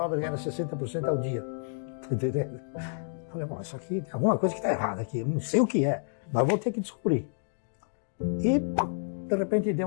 era 60% ao dia. Tá entendendo? Falei, bom, isso aqui tem alguma coisa que está errada aqui, eu não sei o que é, mas vou ter que descobrir. E de repente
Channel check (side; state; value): right; silent; digital silence